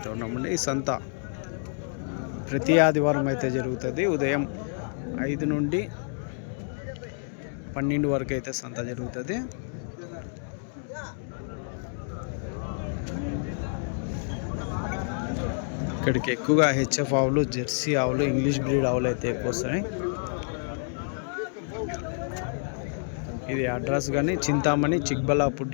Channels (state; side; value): silent; right; 59 dB below the other